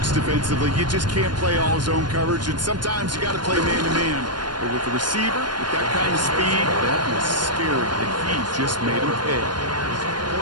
defensively. You just can't play all zone coverage, and sometimes you got to play man-to-man. But with the receiver, with that kind of speed, that was scary, and he just made him pay.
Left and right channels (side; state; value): left; late; 0.71 ms